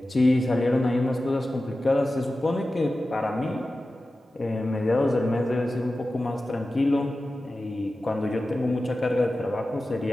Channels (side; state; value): both; normal; correlation 0.94